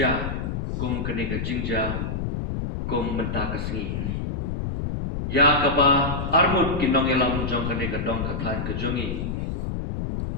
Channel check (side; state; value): left; noise; rumble, 3 dB below the sound